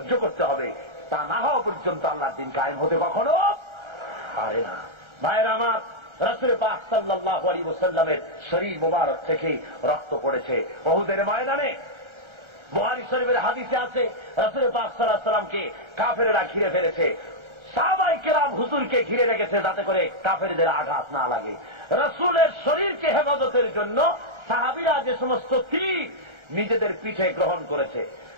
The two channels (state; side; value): late; left; 1.3 ms